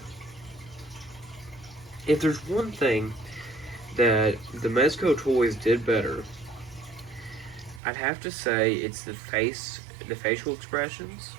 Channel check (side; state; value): left; drops out; at 7.8 s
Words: if there's one thing that the Mezco toys did better, I'd have to say it's the facial expressions.